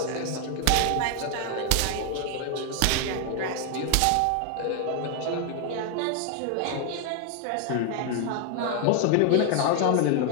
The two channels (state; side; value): different; both; correlation 0.00